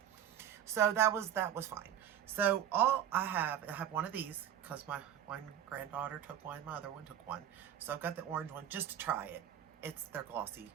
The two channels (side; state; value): left; quieter; 10.1 dB